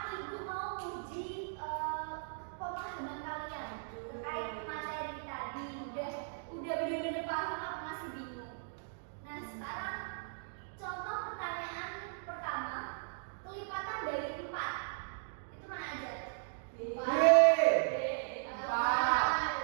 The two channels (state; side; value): silent; left; digital silence